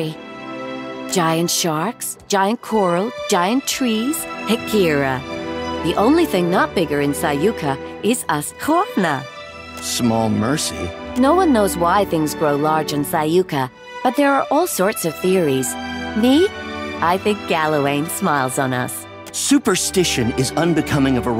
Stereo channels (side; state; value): both; identical; correlation 1.00